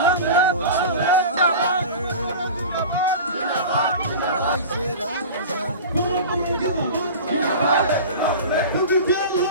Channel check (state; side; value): inverted; both; correlation -0.33